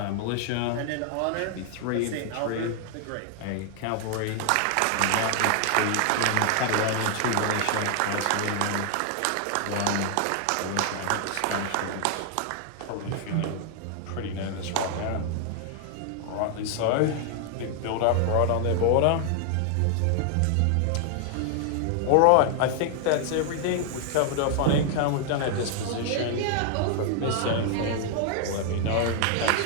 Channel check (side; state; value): both; different; correlation 0.00